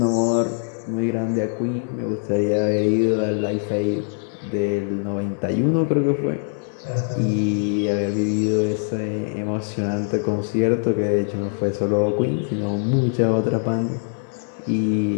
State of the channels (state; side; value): silent; right; digital silence